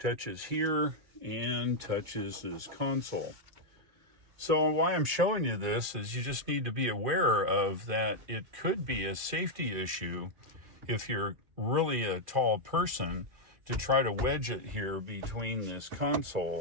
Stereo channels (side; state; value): left; late; 2.4 ms